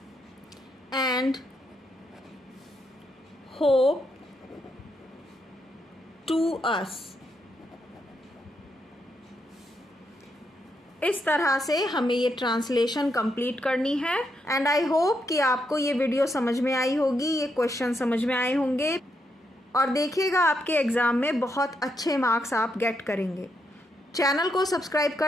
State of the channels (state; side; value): normal; both; correlation 0.80